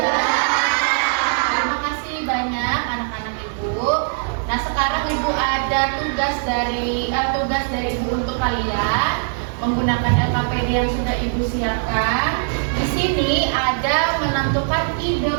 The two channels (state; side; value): silent; left; digital silence